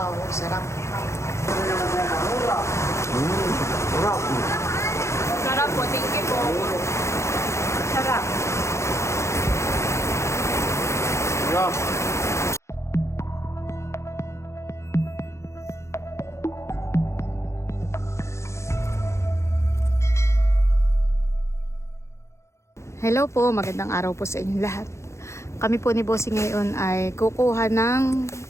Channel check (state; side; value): late; right; 0.14 ms